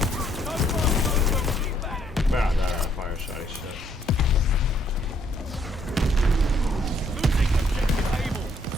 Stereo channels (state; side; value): normal; both; correlation 0.68